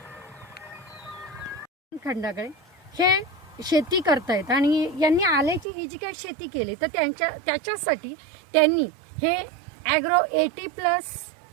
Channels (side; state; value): left; drops out; at 5.7 s